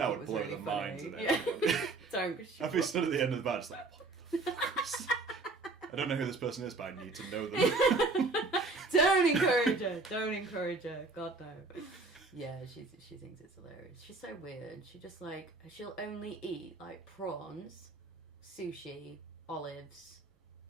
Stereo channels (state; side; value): quieter; left; 3.6 dB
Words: it was really funny. Yeah. Don't. I'd be stood at the end of the bar just like, what the fuck is this? I don't know who this person is, but I need to know them. Don't encourage her. God no. Yeah, she thinks it's hilarious. She's so weird. She'll only eat like prawns, sushi, olives.